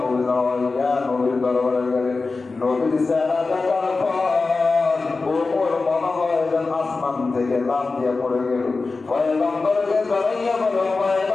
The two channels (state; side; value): quieter; right; 3.9 dB